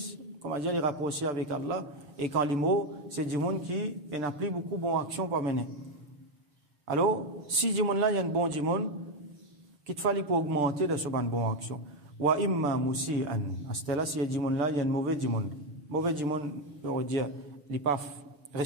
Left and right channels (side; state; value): left; late; 6.8 ms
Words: comment dire, il rapprocher avec Allah. Et quand il mot, c'est djimoun qui n'a plus beaucoup de bonne action pour mener. Alors si djimoun là il y a un bon djimoun, qu'il te fallait pour augmenter de ce ban bonne action. Wa imma musi'an. À ce là si djimoun là il y a un mauvais djimoun. Mauvais djimoun, on veut dire, il pas